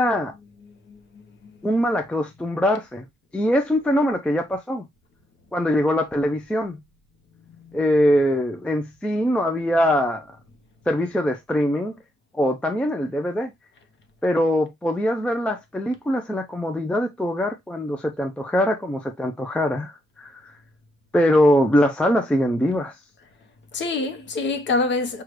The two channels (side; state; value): both; normal; correlation 0.77